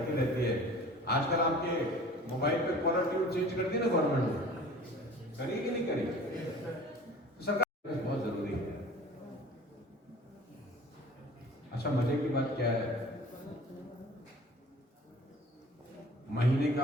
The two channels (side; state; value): both; normal; correlation 0.45